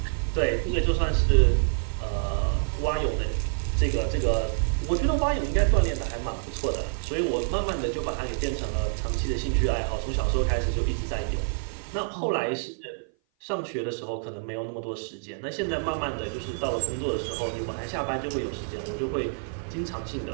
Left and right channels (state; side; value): silent; left; 56 dB below the other